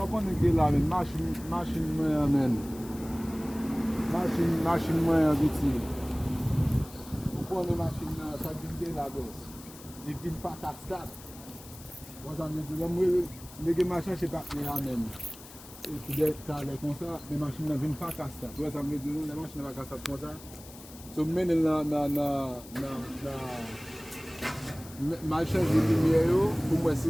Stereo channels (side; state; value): left; noise; hiss, 18 dB below the sound